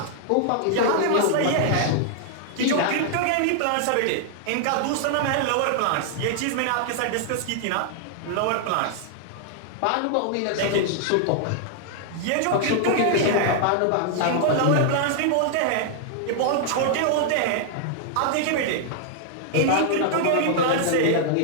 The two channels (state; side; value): different; both; correlation 0.00